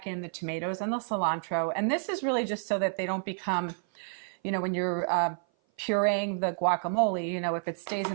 in the tomatoes and the cilantro. And this is really just so that they don't become, you know, when you're pureeing the guacamole, you know, if it stays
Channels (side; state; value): left; silent; 56 dB below the other